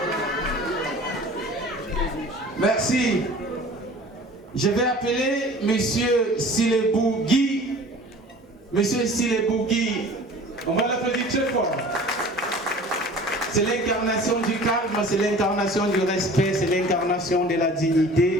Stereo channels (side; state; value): both; normal; correlation 0.44